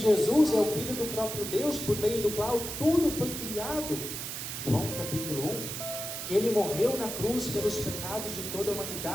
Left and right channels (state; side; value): noise; right; hiss, 6 dB below the sound